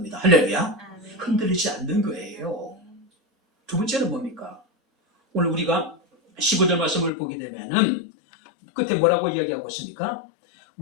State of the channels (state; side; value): drops out; right; at 7.1 s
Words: 할렐루야. 흔들리지 않는 거예요. 두 번째는 뭡니까? 오늘 우리가 15절 말씀을 보게 되면은 끝에 뭐라고 이야기하고 있습니까?